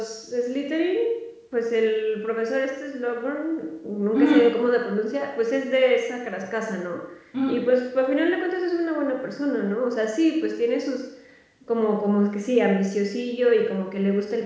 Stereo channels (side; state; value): both; identical; correlation 1.00